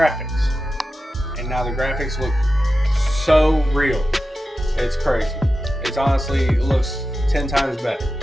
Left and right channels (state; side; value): normal; both; correlation 0.92